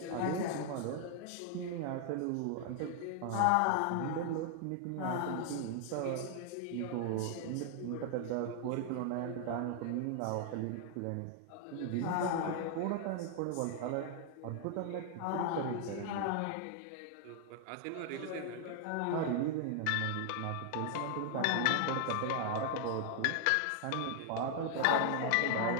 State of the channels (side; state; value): both; different; correlation 0.00